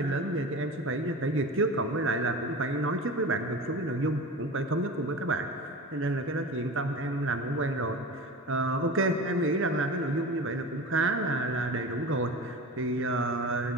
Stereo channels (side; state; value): both; normal; correlation 0.32